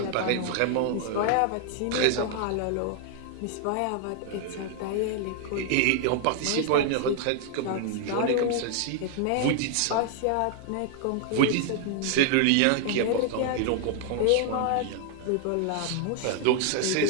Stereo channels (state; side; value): different; both; correlation 0.00